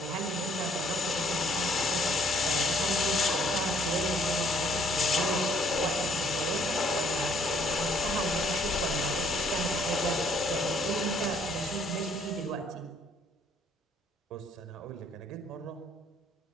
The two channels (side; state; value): both; normal; correlation 0.64